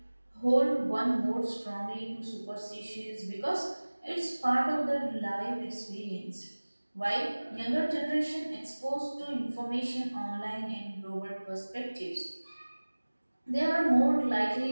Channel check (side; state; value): both; inverted; correlation -1.00